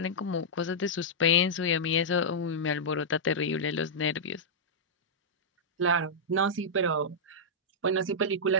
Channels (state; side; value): normal; both; correlation -0.09